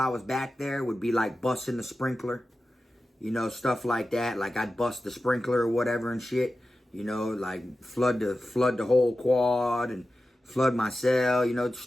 was back there would be like busting the sprinkler, you know, stuff like that. Like I'd bust the sprinkler or whatever and shit, you know, like flood the whole quad and flood my cell, you know,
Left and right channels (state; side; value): normal; both; correlation 0.93